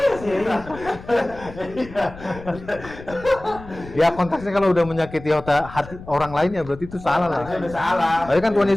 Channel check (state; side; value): noise; left; rumble, 16 dB below the sound